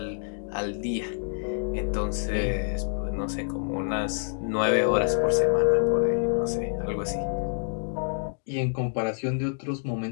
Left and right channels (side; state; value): right; silent; digital silence